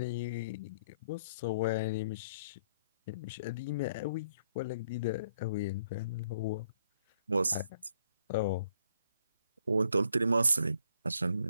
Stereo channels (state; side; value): inverted; both; correlation -0.67